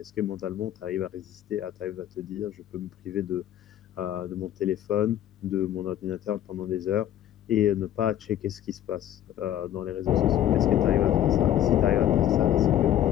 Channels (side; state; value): right; quieter; 11.7 dB